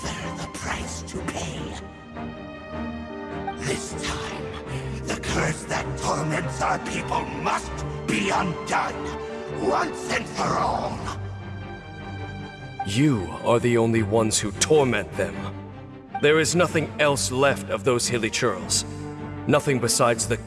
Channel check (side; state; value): both; identical; correlation 1.00